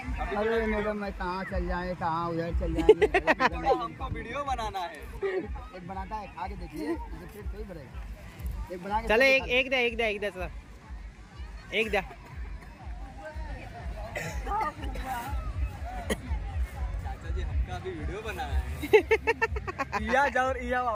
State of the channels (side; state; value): both; identical; correlation 1.00